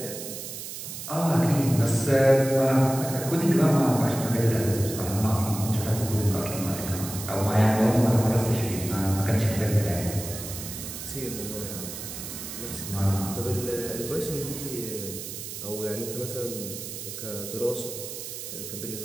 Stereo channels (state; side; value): noise; right; hiss, 9 dB below the sound